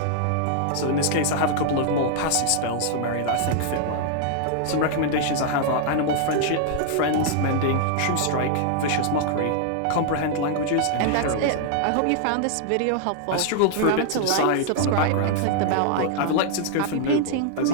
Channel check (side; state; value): both; different; correlation -0.01